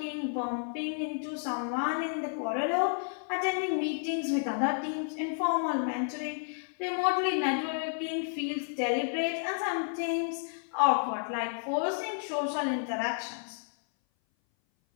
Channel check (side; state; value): right; silent; 57 dB below the other